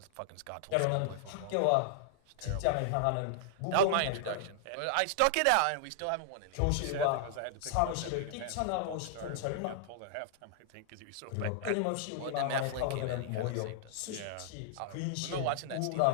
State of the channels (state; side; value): different; both; correlation -0.01